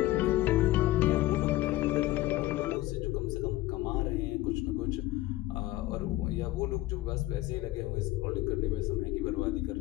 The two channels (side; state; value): right; quieter; 16.9 dB